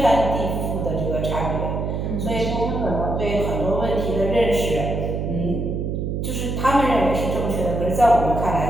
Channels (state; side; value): noise; right; hum, 2 dB below the sound